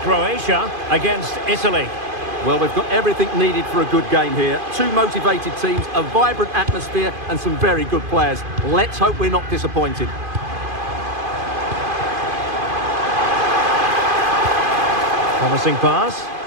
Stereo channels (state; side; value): late; left; 2.5 ms